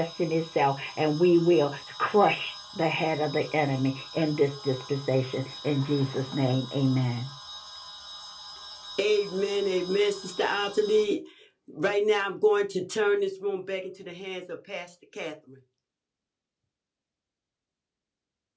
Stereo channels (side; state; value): both; identical; correlation 1.00